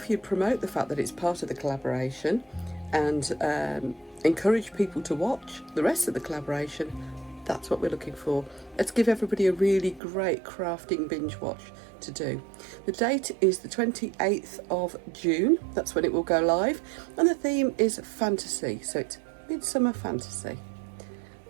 you promote the fact that it's part of the collaboration and encourage people to watch the rest of the collaboration, that's what we're looking for. Let's give everybody a really great crafting binge watch to do. The date is the 28th of June. That's when it will go live. And the theme is fantasy. So it's midsummer fantasy.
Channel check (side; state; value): left; drops out; at 10.0 s